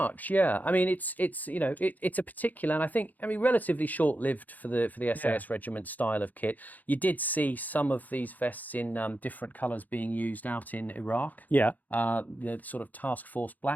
yeah. I mean, it's you know, it's a particular, and I mean, relatively short-lived for the SAS regiment style of kit. You did see some of these vests in different colours being used out in Iraq. Yeah. The sort of task force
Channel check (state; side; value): late; right; 0.081 ms